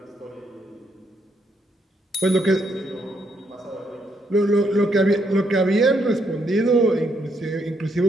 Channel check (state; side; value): normal; both; correlation 0.75